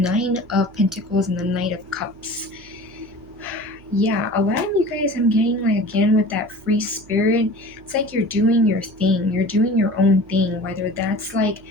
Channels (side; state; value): right; noise; hum, 24 dB below the sound